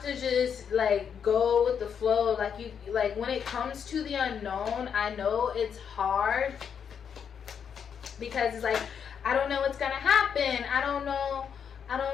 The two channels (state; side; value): quieter; right; 7.4 dB